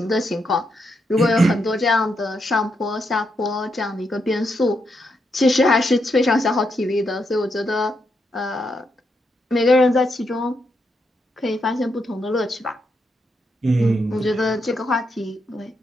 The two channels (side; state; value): both; normal; correlation 0.81